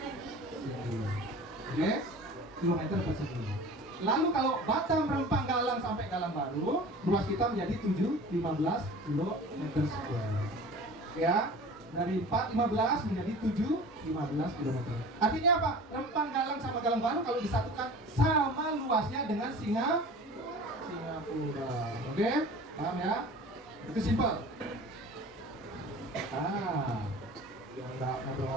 segi. Oke? Kilometer persegi. Lalu kalau Batam, Rempang, Galang sampai Galang Baru, luas kita menjadi 715 km square. Ya, dari 415 menjadi 715 km. Artinya apa? Rempang, Galang sama Galang Baru kalau disatukan sama luasnya dengan Singapura. Oke? Paham ya? Itu simpel. Yang enggak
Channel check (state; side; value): normal; both; correlation 0.40